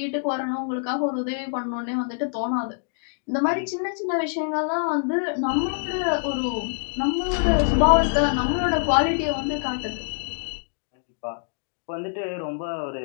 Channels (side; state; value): right; silent; digital silence